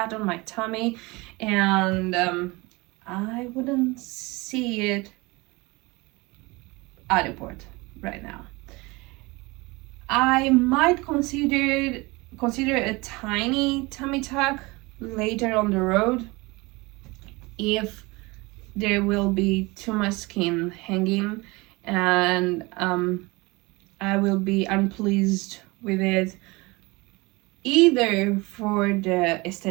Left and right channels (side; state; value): left; quieter; 24.1 dB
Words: on my tummy, and I wouldn't see it adequate right now. I might consider a tiny tummy tuck later on the road if there will be too much skin hanging and I will be unpleased with it, either for the